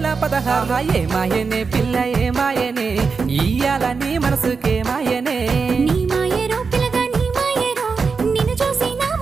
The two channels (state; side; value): quieter; left; 5.0 dB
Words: ఏ మాయనే పిల్ల ఏ మాయనే ఇయ్యాల నీ మనసుకే మాయనే నీ మాయరో పిల్లగా నీ మాయరో నిన్ను చూసి నా